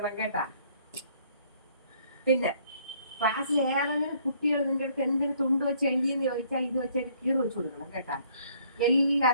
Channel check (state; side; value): inverted; both; correlation -0.63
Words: കേട്ടാ പിന്നെ ക്ലാസ്സിൽ ഏതെങ്കിലും കുട്ടികൾ നിന്റെ അടുത്ത് എന്തെങ്കിലും തുണ്ട് വെച്ച് എഴുതിയെന്ന് ചോദിച്ചാൽ ഇത് വെച്ച് കീറ് വെച്ച് കൊടുക്കണം കേട്ടാ എല്ലാ